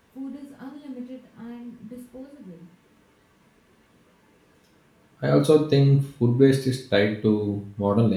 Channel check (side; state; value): both; identical; correlation 1.00